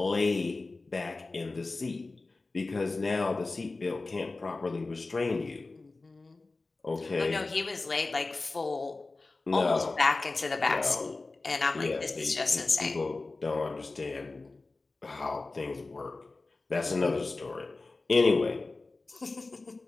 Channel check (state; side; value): quieter; right; 3.5 dB